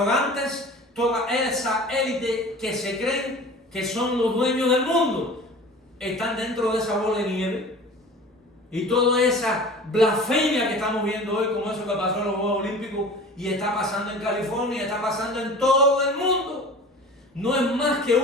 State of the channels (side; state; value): both; normal; correlation 0.40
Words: toda esa élite que se creen que son los dueños del mundo, están dentro de esa bola de nieve. Y toda esa blasfemia que estamos viendo hoy, como eso que pasó en los Juegos Olímpicos y está pasando en California, está pasando en todo el mundo, no es más que